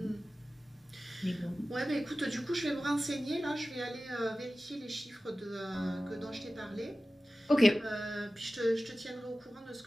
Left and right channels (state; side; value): normal; both; correlation 0.96